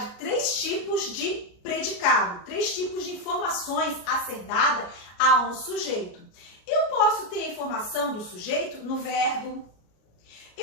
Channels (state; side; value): late; right; 33 ms